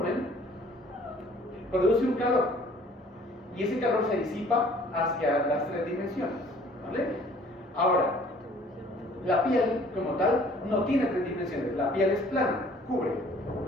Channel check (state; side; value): normal; both; correlation 0.55